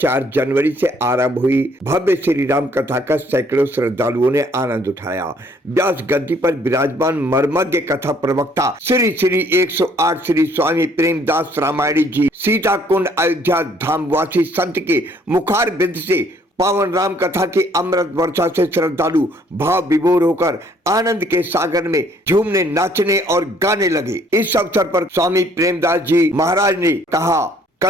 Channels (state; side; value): normal; both; correlation 0.62